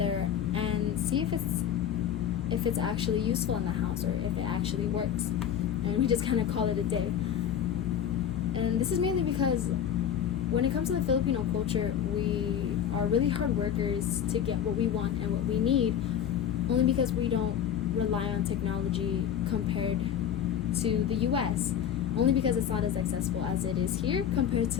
and see if it's actually useful in the house or if it actually works. And we just kind of call it a day. And this is mainly because when it comes to the Filipino culture, we are really hard workers to get what we want and what we need, only because we don't rely on technology compared to the US, only because it's not as accessible as it is here compared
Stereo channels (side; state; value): right; quieter; 9.2 dB